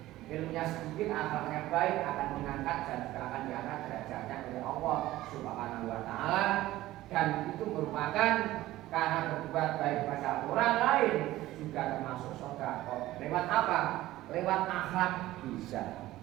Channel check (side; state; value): left; quieter; 16.1 dB